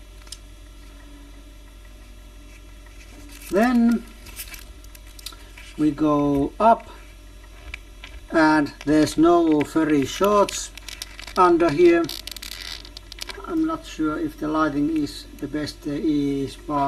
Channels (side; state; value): both; identical; correlation 1.00